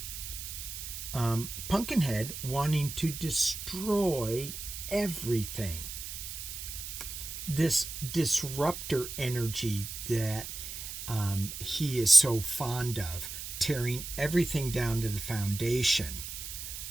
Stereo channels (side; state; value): right; noise; hiss, 8 dB below the sound